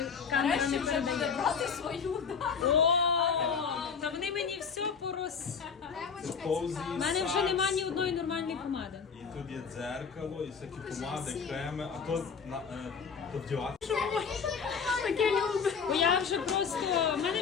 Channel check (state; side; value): quieter; right; 6.1 dB